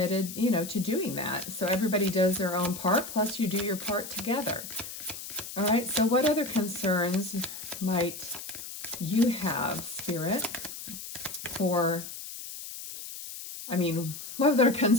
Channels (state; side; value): noise; left; hiss, 10 dB below the sound